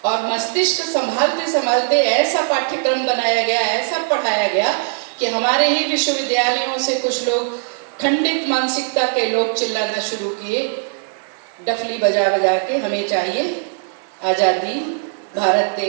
और मस्तिष्क संभालते संभालते ऐसा पाठ्यक्रम बनाया गया, ऐसा पढ़ाया गया कि हमारे ही विश्वविद्यालयों से कुछ लोग खंडित मानसिकता के लोग चिल्लाना शुरू किए, डफली बजा बजा के, हमें चाहिए आज़ादी, भारत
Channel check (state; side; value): silent; left; 59 dB below the other